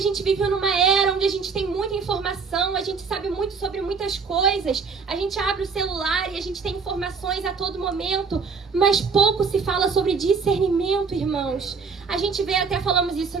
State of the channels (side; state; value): left; quieter; 5.2 dB